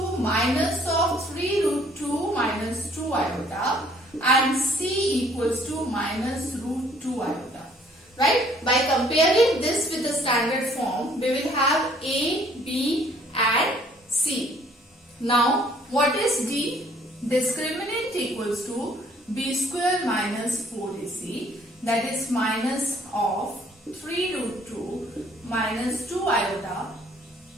minus of 3 root 2 minus 2 iota. And C equals to minus root 2 iota. Right? By comparing this with the standard form, we will have A, B and C. Now, what is D? Discriminant equals to B square minus 4AC. That is minus of 3 root 2 minus 2 iota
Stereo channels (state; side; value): normal; both; correlation 0.60